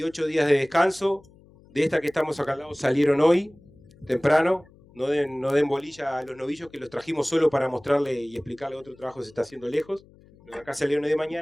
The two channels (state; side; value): noise; left; hum, 26 dB below the sound